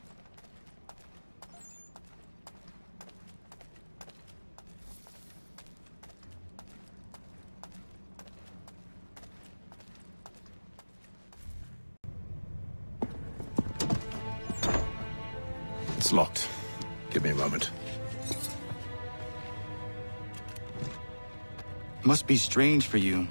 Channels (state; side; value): inverted; both; correlation -1.00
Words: It's locked. Give me a moment. Must be strange for you,